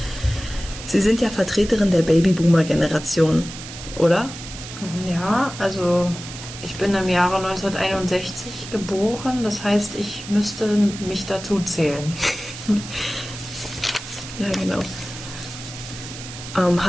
Sie sind ja Vertreterin der Babyboomer-Generation, oder? Ja, also ich bin im Jahre 1961 geboren, das heißt, ich müsste mich dazu zählen. Ja, genau.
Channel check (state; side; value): noise; right; hiss, 12 dB below the sound